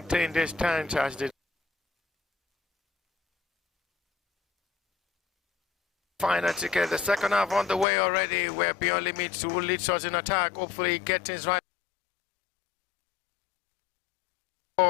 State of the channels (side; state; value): right; drops out; at 7.9 s